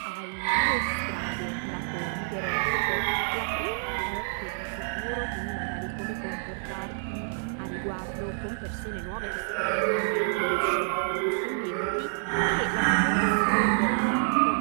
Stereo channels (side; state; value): left; silent; digital silence